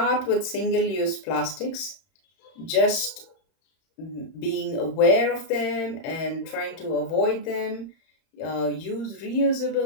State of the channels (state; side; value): late; right; 31 ms